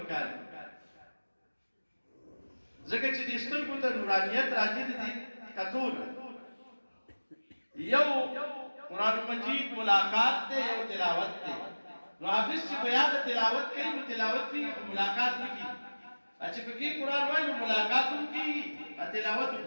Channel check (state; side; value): inverted; both; correlation -1.00